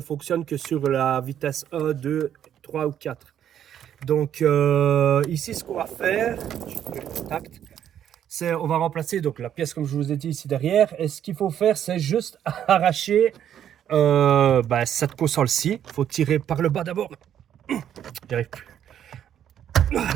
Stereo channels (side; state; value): left; quieter; 10.0 dB